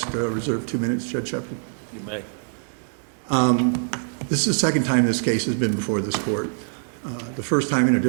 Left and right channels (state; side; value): silent; left; digital silence